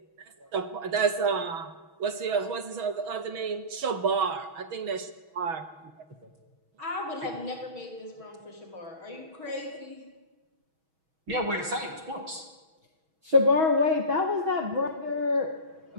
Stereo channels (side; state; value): left; late; 6.2 ms